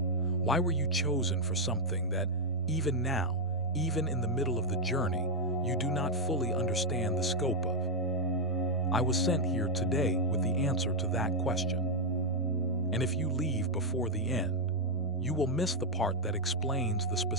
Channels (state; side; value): normal; both; correlation -0.01